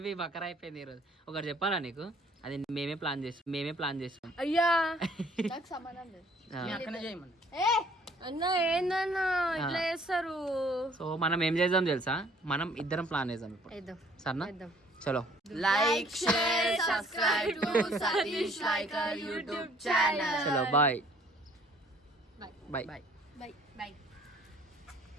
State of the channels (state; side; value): normal; both; correlation 0.58